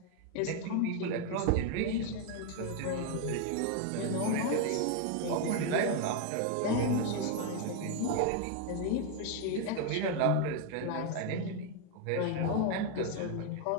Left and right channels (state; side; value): different; both; correlation 0.01